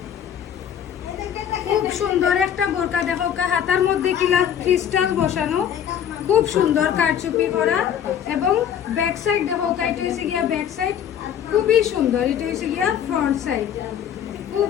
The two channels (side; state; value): right; quieter; 9.3 dB